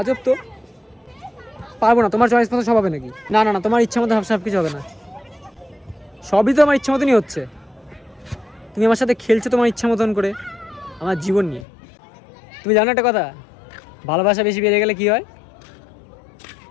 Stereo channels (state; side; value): drops out; right; at 11.7 s